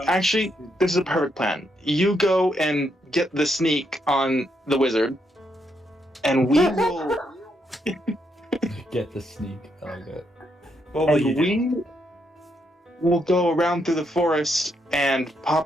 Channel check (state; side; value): normal; both; correlation 0.78